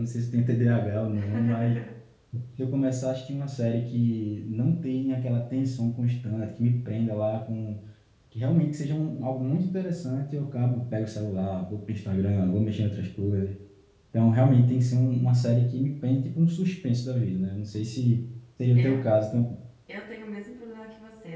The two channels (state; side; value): identical; both; correlation 1.00